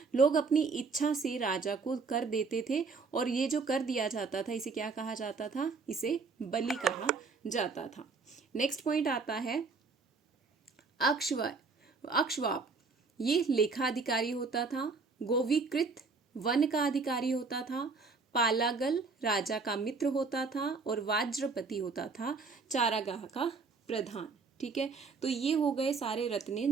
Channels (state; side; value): quieter; left; 4.5 dB